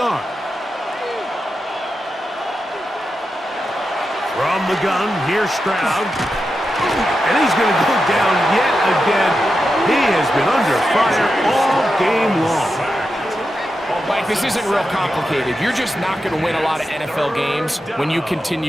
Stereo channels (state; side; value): normal; both; correlation 0.89